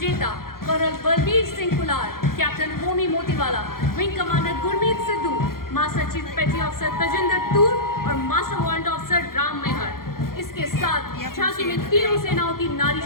colonel Balbir Singh Kular, captain Homi Motiwala, wing commander Gurmeet Sidhu, master chief petty officer Tajinder Toor और master warrant officer Ram Mehar. इसके साथ झांकी में तीनों सेनाओं की नारी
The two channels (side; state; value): right; late; 0.92 ms